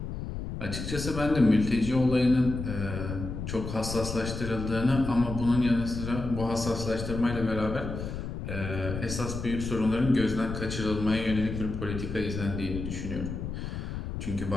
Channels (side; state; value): left; noise; rumble, 6 dB below the sound